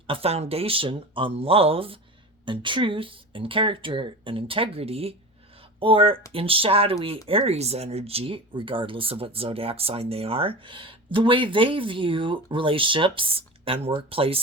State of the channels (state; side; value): normal; both; correlation 0.30